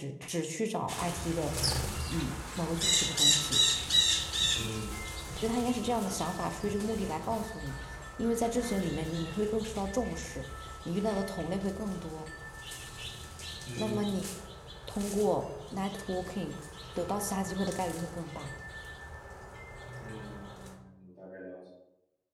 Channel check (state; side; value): identical; both; correlation 1.00